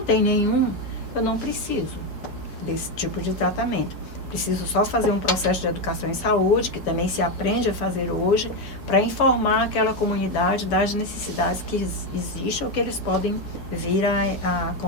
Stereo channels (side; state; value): right; late; 4.7 ms